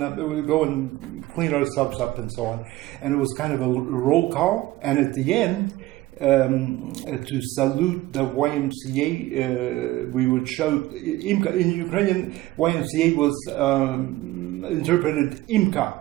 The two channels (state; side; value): quieter; left; 17.3 dB